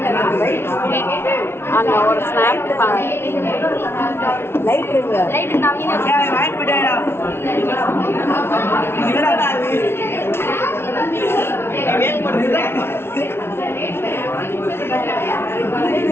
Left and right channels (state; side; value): late; right; 0.12 ms